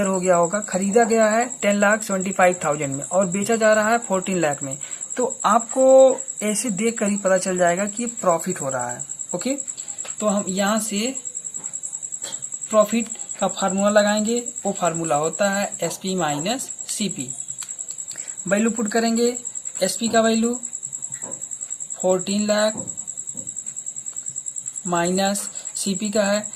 हो गया होगा। खरीदा गया है 10,75,000 में और बेचा जा रहा है 14 लाख में, तो आपको ऐसे देख कर ही पता चल जाएगा कि ये प्रॉफिट हो रहा है। ओके, तो हम यहाँ से प्रॉफिट का फार्मूला लगाएंगे। वो फार्मूला होता है SP minus CP. Value put करेंगे। एसपी का वैल्यू 14 लाख माइनस सीपी का है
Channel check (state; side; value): identical; both; correlation 1.00